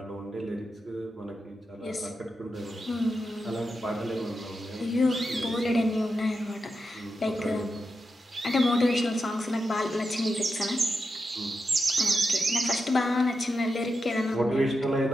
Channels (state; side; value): normal; both; correlation 0.88